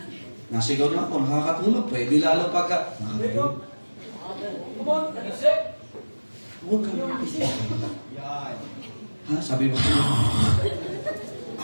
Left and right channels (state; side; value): inverted; both; correlation -1.00